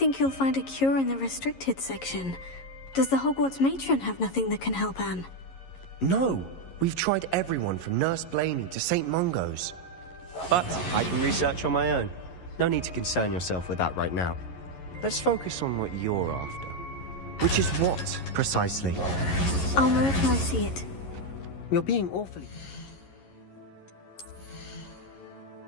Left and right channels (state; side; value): late; right; 11 ms